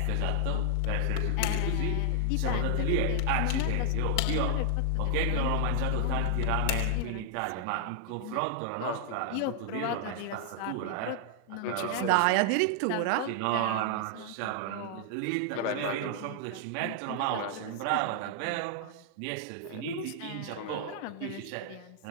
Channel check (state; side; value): different; both; correlation 0.00